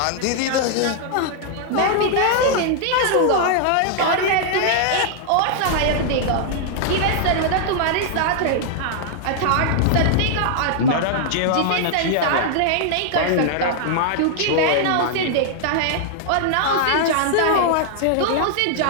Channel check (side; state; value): both; different; correlation -0.01